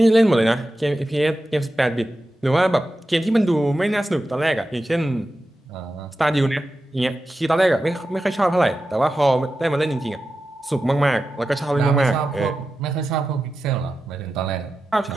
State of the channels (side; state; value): both; normal; correlation 0.92